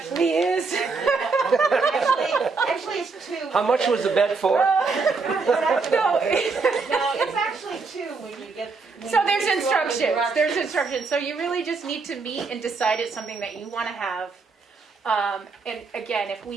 is. Actually, it's 2. How much was the bet for? No, No, it's actually 2 when you get. so there's instructions. There's instructions. So you really just need to meet and decide it's something that you want to have. And again, if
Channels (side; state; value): left; quieter; 4.4 dB